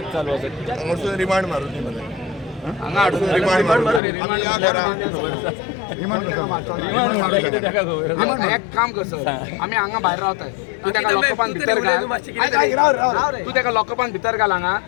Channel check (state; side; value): drops out; right; at 4.0 s